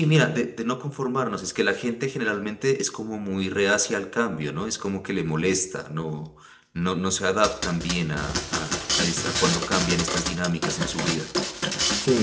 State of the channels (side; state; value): both; identical; correlation 1.00